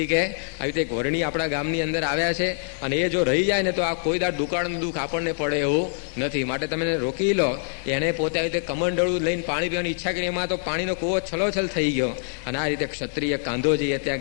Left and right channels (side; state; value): right; silent; 62 dB below the other